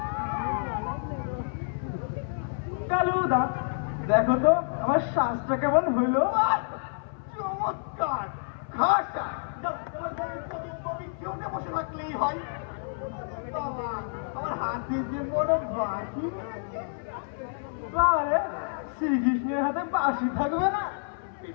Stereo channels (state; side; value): silent; right; 58 dB below the other